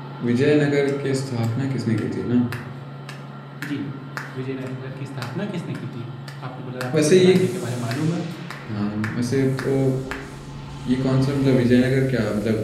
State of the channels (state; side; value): identical; both; correlation 1.00